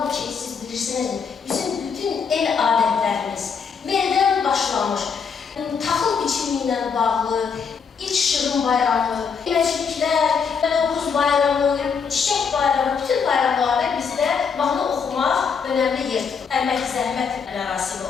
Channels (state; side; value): quieter; right; 6.1 dB